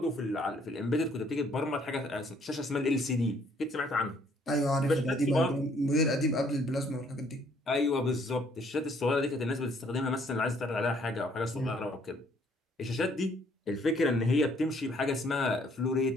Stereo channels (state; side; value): normal; both; correlation 0.64